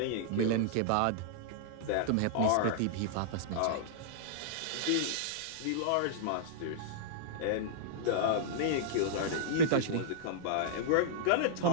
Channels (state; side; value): different; both; correlation -0.02